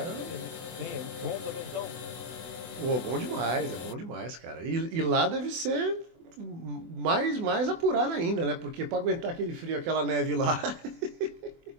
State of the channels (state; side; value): late; left; 24 ms